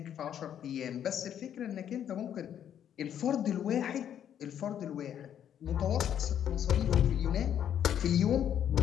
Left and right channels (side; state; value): right; quieter; 9.7 dB